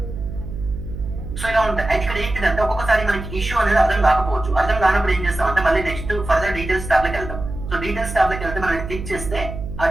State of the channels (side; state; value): right; noise; hum, 9 dB below the sound